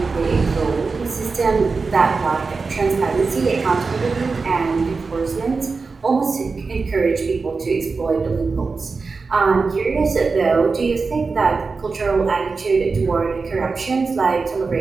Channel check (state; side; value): quieter; left; 4.4 dB